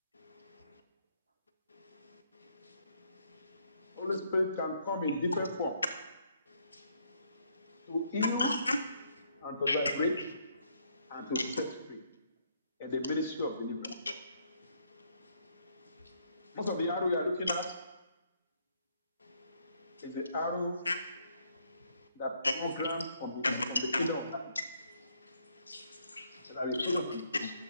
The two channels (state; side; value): inverted; both; correlation -0.70